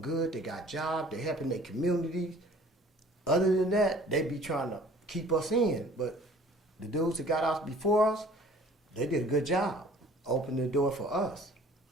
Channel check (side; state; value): both; normal; correlation 0.51